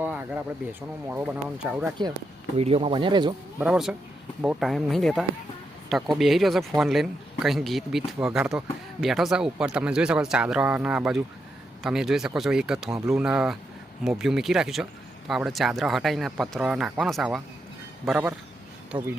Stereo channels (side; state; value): both; normal; correlation 0.83